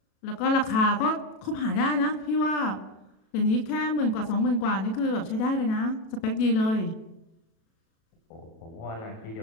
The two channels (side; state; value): right; late; 37 ms